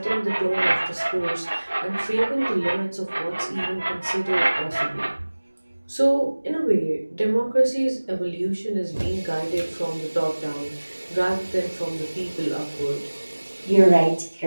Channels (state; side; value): inverted; both; correlation -1.00